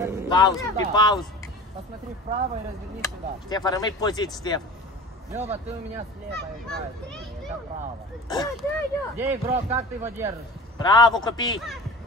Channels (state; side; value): normal; both; correlation 0.37